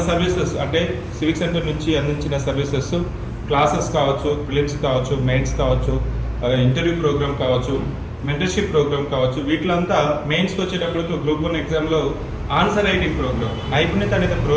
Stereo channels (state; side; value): identical; both; correlation 1.00